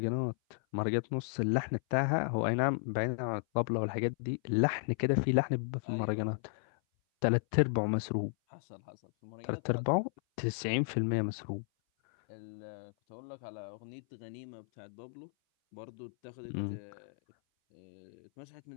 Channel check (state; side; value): silent; right; 55 dB below the other